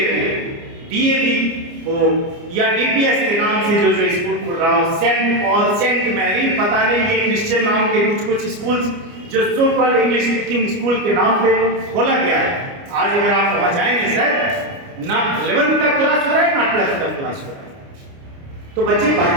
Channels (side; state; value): left; late; 29 ms